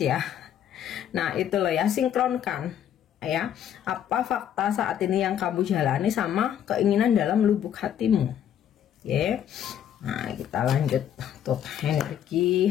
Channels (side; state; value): right; quieter; 9.9 dB